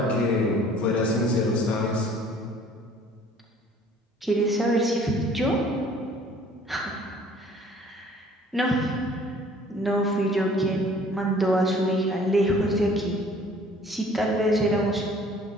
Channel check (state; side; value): normal; both; correlation 0.53